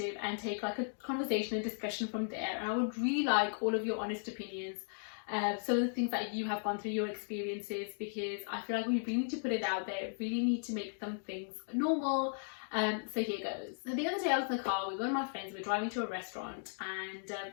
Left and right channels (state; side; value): silent; right; digital silence